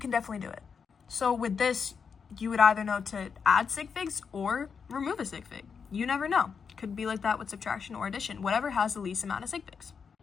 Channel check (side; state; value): right; quieter; 6.1 dB